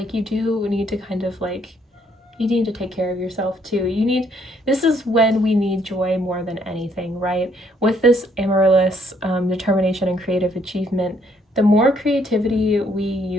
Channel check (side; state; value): both; normal; correlation 0.68